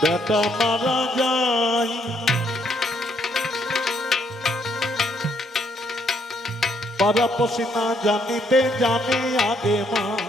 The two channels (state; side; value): normal; both; correlation 0.71